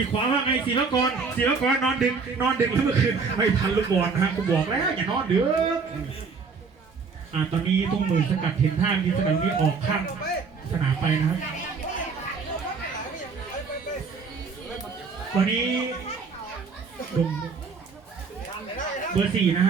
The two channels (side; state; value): left; quieter; 5.0 dB